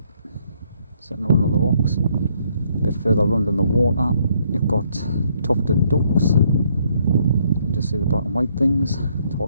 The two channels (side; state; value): both; inverted; correlation -0.69